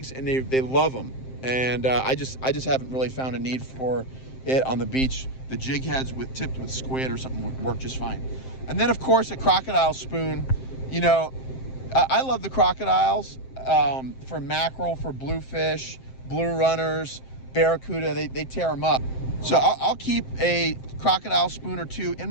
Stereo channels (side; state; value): right; late; 7.6 ms